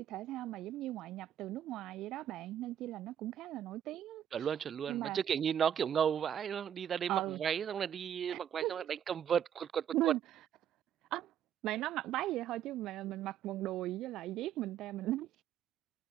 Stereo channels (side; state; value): left; quieter; 9.8 dB